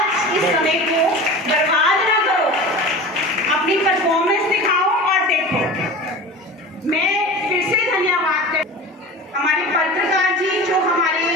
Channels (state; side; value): normal; both; correlation 0.34